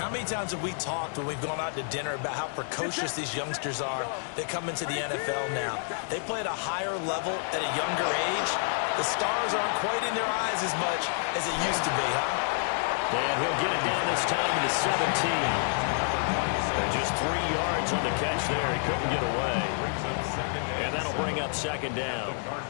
many times have we talked when we've gone out to dinner about how precocious these youngsters are that come into the NFL now? They play at a higher level at a younger age. The stars aren't quite in their eyes as much as it used to be, huh? And he'll get it down this time to 17. And just 3 yards on the catch there. He couldn't get away. And that'll bring up second down. The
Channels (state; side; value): silent; right; 59 dB below the other